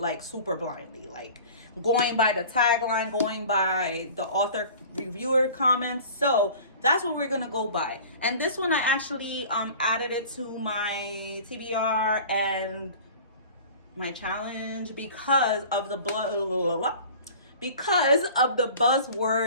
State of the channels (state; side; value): inverted; both; correlation -0.42